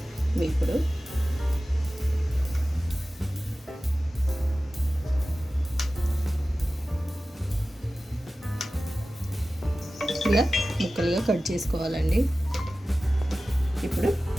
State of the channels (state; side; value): normal; both; correlation 0.95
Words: వేపుడు. ఇలా ముక్కలుగా కట్ చేసుకోవాలండి. ఇప్పుడు